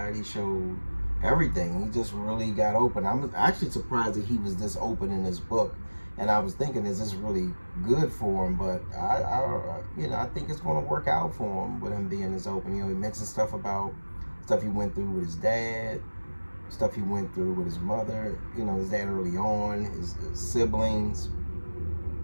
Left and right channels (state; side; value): inverted; both; correlation -1.00